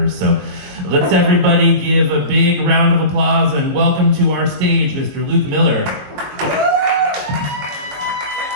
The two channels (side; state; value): left; late; 21 ms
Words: So let's everybody give a big round of applause and welcome to our stage, Mr. Luke Miller.